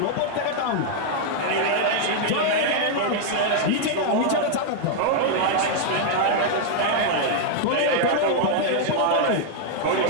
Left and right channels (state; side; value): different; both; correlation -0.01